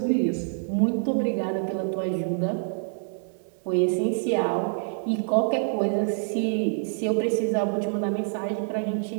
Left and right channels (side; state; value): left; silent; 61 dB below the other